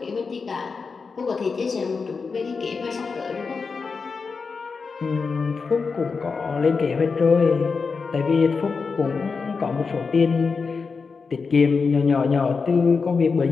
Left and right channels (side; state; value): right; quieter; 4.9 dB